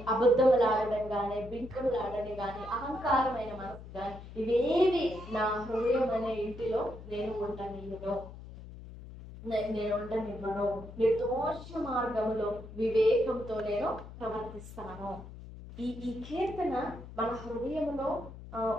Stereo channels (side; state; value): left; noise; hum, 14 dB below the sound